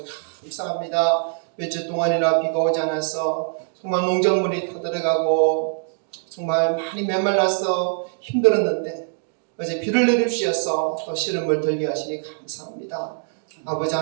감사합니다. 며칠 동안이나 비가 오지 않아서 정말 농작물이 타들어가고 정말 많이 메말라서 힘들었는데 어제 비를 내려주셔서 또 시름을 들게 하시니 감사합니다. 아버지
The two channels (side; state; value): left; silent; digital silence